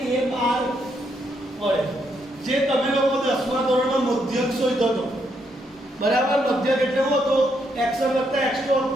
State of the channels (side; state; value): both; normal; correlation 0.76